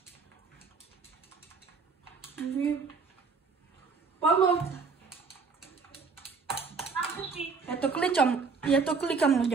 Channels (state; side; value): quieter; left; 4.8 dB